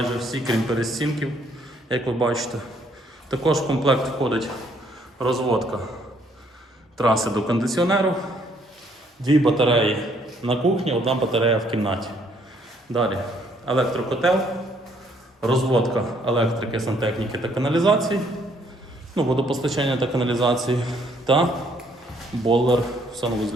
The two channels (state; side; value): normal; both; correlation 0.66